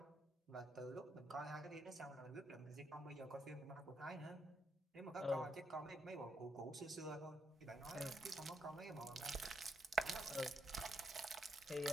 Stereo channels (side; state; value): both; normal; correlation 0.77